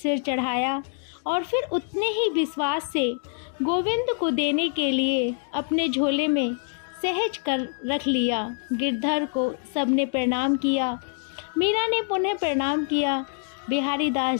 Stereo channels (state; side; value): silent; right; 61 dB below the other